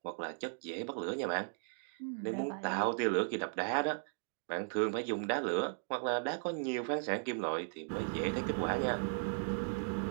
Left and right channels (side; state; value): left; silent; digital silence